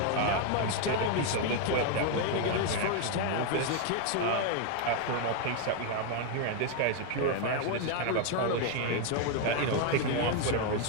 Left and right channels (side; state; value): both; different; correlation 0.01